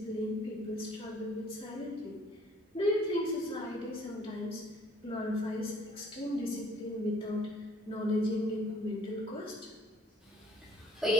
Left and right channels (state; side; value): normal; both; correlation 0.59